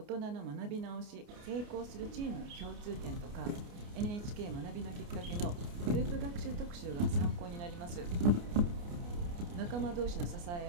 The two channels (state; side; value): late; left; 29 ms